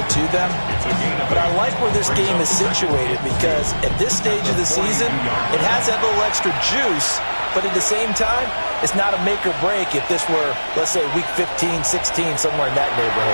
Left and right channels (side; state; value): both; inverted; correlation -1.00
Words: to them. But I like where this game is situated, because at this stage of the season, it has that little extra juice. But at the same time, it's not a make or break if this were, let's say, week 15, 16, somewhere in that